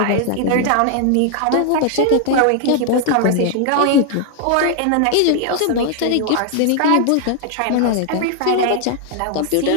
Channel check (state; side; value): different; both; correlation 0.00